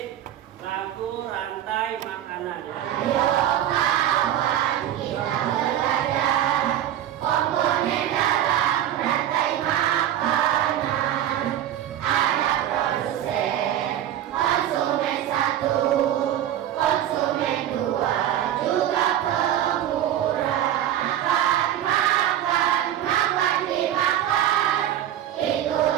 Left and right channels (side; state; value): left; quieter; 11.5 dB